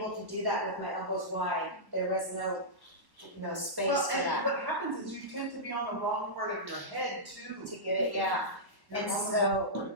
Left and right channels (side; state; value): left; late; 1.1 ms